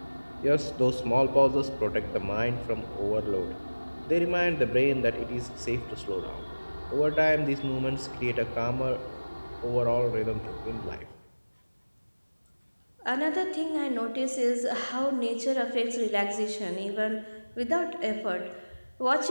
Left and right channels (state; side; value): inverted; both; correlation -1.00